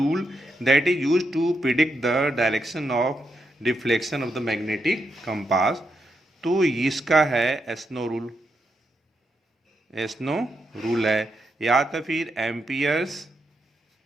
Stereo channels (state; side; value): normal; both; correlation 0.82